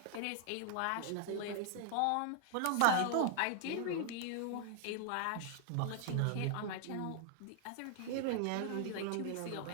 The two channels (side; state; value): both; different; correlation 0.00